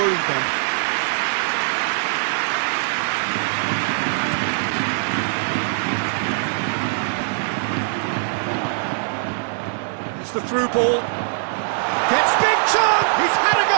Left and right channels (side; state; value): left; silent; digital silence